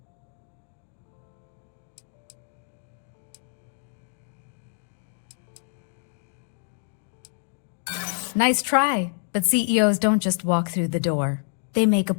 Nice try, but CEOs don't just walk through the door. They make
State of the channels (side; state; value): right; silent; digital silence